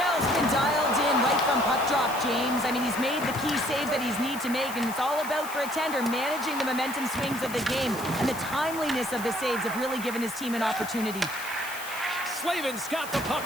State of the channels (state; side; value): noise; left; hiss, 12 dB below the sound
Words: been dialed in right from puck drop, James. I mean, he's made the key saves that he's need to make, and it's all about, for a tender, managing the momentum swings of the game. And the timeliness of the saves have really given his team an opportunity. Slavin's got the puck